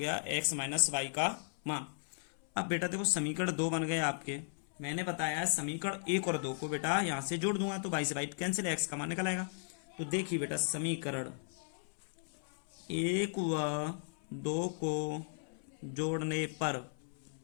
x माइनस वाई का मान। अब बेटा देखो समीकरण 2 बन गए आपके। मैंने बताया समीकरण 1 और 2 को बेटा यहाँ से जोड़ दूंगा तो y से y कैंसिल, x का मान निकल आएगा। तो देखिए बेटा समीकरण 1 व 2 को जोड़ने पर,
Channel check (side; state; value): right; silent; 54 dB below the other